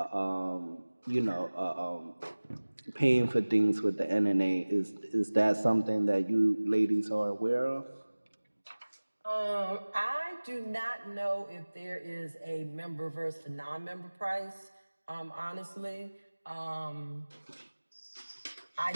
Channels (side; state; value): both; inverted; correlation -1.00